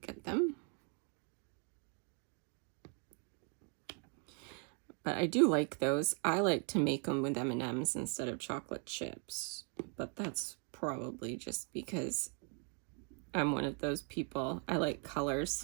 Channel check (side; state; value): left; quieter; 39.4 dB